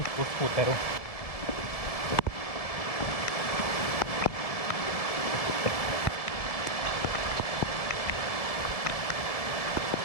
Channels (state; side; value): late; right; 1.7 ms